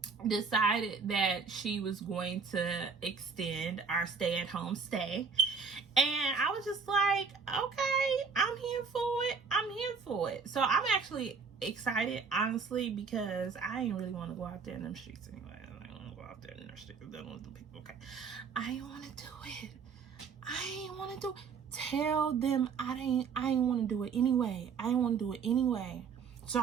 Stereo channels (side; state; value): left; quieter; 5.5 dB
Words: decided that she was going to extend our stay-at-home stay, and I was just like, okay, I'm here for it. So I'm actually excited, honestly, because I ain't really want to go out there in them streets anyway. I don't want to go out there in them streets dealing with the people. Okay, I ain't want to do it. Tell them I ain't want to do it anyway. So